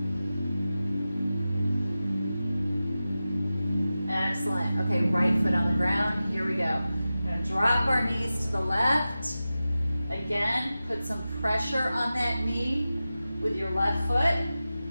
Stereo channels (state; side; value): inverted; both; correlation -0.94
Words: Excellent. Okay, right foot on the ground. Here we go. We're gonna drop our knees to the left. Again, put some pressure on that knee with your left foot.